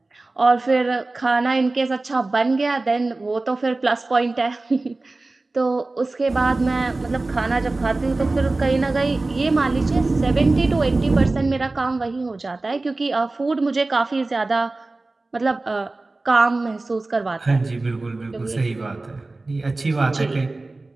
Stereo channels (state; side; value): quieter; left; 3.2 dB